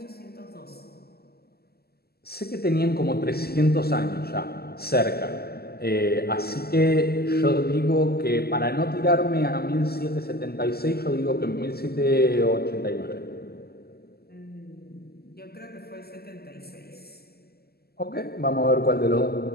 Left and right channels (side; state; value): right; late; 0.46 ms